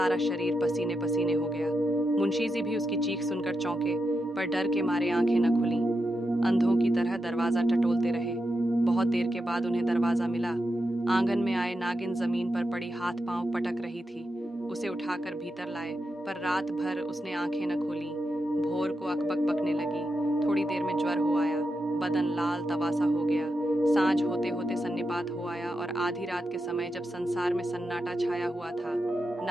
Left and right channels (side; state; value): both; normal; correlation 0.87